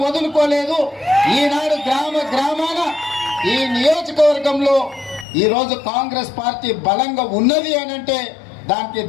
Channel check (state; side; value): drops out; right; at 5.2 s